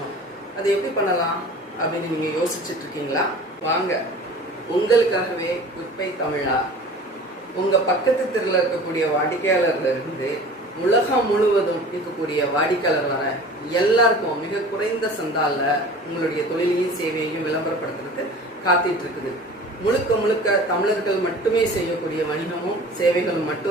அது எப்படி பண்ணலாம் அப்படின்னு நீங்கள் யோசிச்சுட்ருக்கீங்களா? வாங்க, உங்களுக்காகவே குட்பை தமிழா உங்கள் பக்கத்து தெருவில் இருக்கக்கூடிய வாடிக்கையாளர்லேருந்து உலகம் முழுவதும் இருக்கக்கூடிய வாடிக்கையாளர் வர எல்லாருக்கும் மிக குறைந்த சந்தாலில் உங்களுடைய தொழிலையும் சேவையையும் விளம்பரப்படுத்துறதுக்கு காத்துட்டு இருக்குது. முழுக்க முழுக்க தமிழர்கள் மட்டுமே செய்யக்கூடிய வணிகமும் சேவைகளும்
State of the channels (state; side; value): normal; both; correlation 0.42